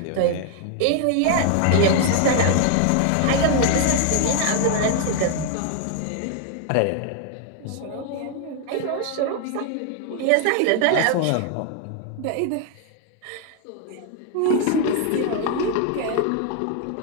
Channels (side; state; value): both; different; correlation 0.00